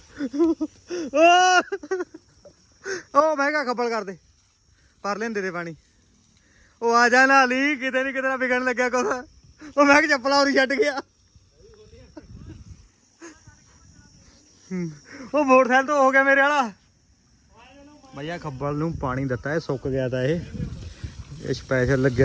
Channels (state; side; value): identical; both; correlation 1.00